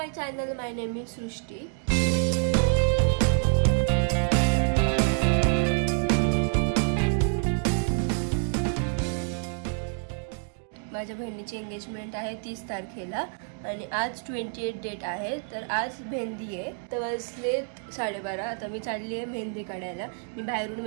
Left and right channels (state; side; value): silent; left; 60 dB below the other